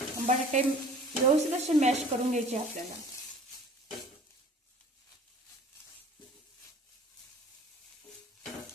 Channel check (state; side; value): normal; both; correlation 0.48